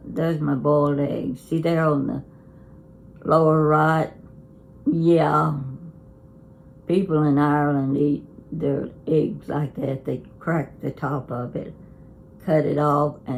there's my boiled eggs. See, they're on the lower right. Yeah. People in Ireland eat their eggs like that. They crack the top of it, cut it off,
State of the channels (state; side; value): identical; both; correlation 1.00